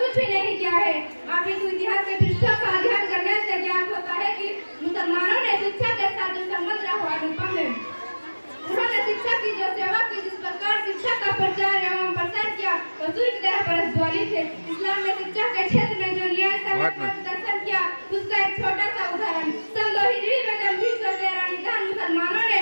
भी नहीं किया है। आप इस इतिहास के पृष्ठों का अध्ययन करने से ज्ञात होता है कि मुसलमानों ने शिक्षा के साथ जो संबंध रखा अनुपम है। उन्होंने शिक्षा की जो सेवा की, जिस प्रकार शिक्षा का प्रचार एवं प्रसार किया, वो सूर्य की तरह प्रज्वलित है। इस्लाम ने शिक्षा के क्षेत्र में जो न्याय प्रदर्शन किया, उसका एक छोटा सा उदाहरण सन 2 हिजरी में जब 313 मुसलमानों ने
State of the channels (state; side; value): inverted; both; correlation -1.00